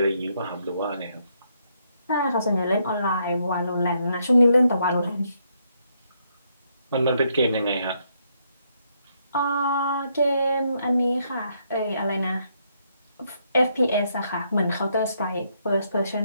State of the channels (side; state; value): both; inverted; correlation -0.75